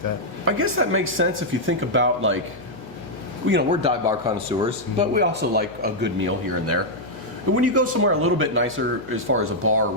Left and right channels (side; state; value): left; noise; hum, 23 dB below the sound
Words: that. I guess that makes sense if you think about, like, we're dive bar connoisseurs, but we also like a good meal here and there. But when you go somewhere a little bit nicer as far as a bar or